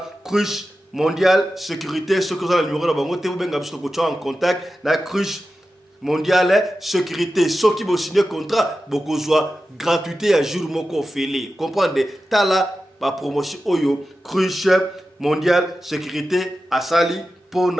Cruche Mondiale Sécurité ce que vous avez le numéro na bango te bobenga biso ko en contact na Cruche Mondiale Sécurité. Ceux qui vont signer contrat beaucoup soit gratuité à jour moko félé. Comprendre tala ba promotion oyo Cruche Mondiale Sécurité asali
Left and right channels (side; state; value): both; normal; correlation 0.92